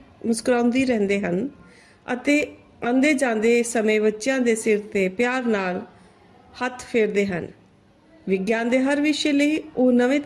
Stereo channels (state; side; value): identical; both; correlation 1.00